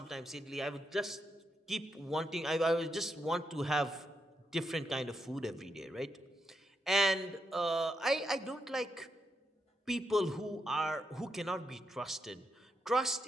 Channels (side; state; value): both; normal; correlation 0.83